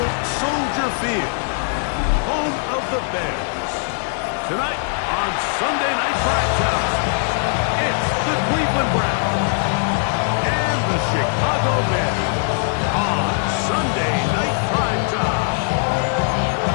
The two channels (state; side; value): silent; right; 65 dB below the other